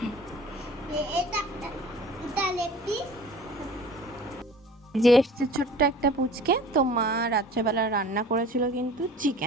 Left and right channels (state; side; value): normal; both; correlation 0.44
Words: এটা লেগ পিস। যে এসছে ছোট্ট একটা পুচকে, তো মা রাত্রেবেলা রান্না করেছিল কিন্তু